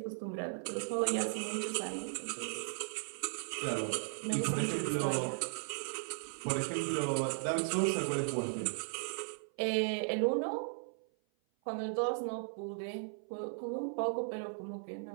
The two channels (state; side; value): silent; left; 53 dB below the other